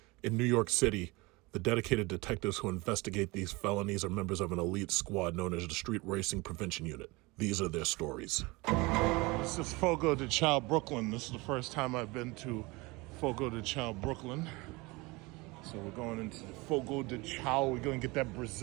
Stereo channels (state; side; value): quieter; left; 24.2 dB